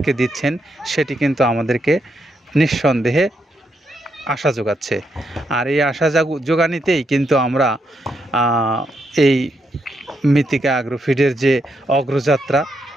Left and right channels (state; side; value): normal; both; correlation 0.80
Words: দিচ্ছেন সেটি কিন্তু আমাদেরকে নিঃসন্দেহে আশা যোগাচ্ছে। আর এই আশা যোগানিতেই কিন্তু আমরা এই মৃত্তিকা অ্যাগ্রোফিডের যে অগ্রযাত্রা